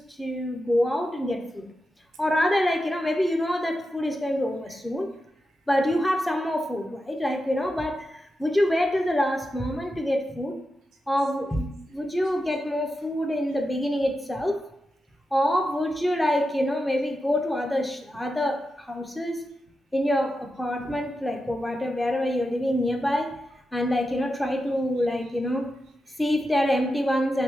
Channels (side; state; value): both; normal; correlation 0.89